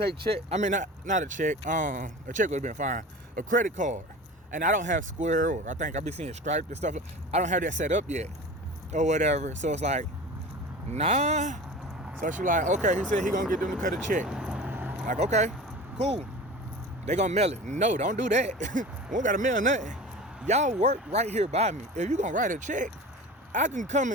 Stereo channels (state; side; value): normal; both; correlation 0.35